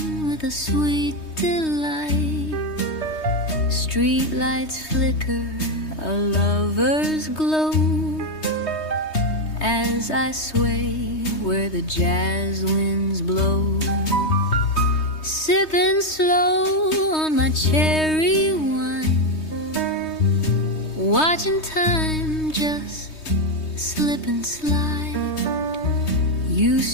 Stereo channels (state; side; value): late; right; 3.2 ms